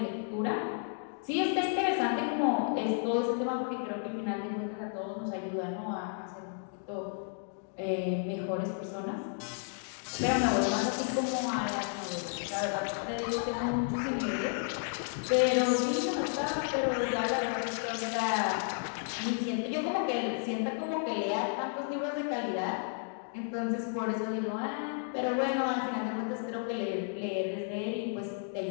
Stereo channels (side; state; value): right; silent; 56 dB below the other